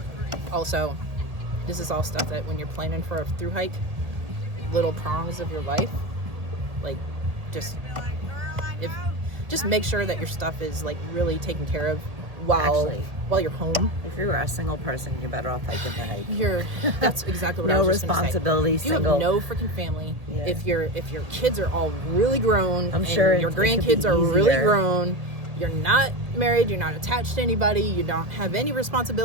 also, this is all stuff that when you're planning for a thru hike, little prongs of your life, like, just make sure that your stuff is, like, really taken care of while you're home. If you were a single person, you're better off hiking the hike. That's exactly what I No was just gonna say. responsibility, If you single. have no freaking family, Yeah. if your kids are all really grown, I'm and sure your it could be grandkids are really easier. grown, you're not married, you're not attached to anybody, you don't have any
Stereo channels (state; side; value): late; left; 1.8 ms